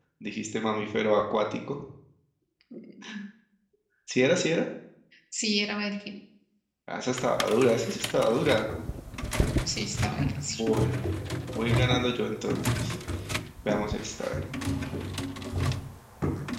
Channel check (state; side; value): identical; both; correlation 1.00